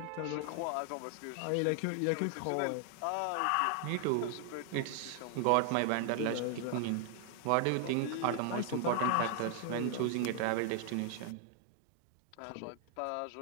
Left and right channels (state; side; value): different; both; correlation 0.00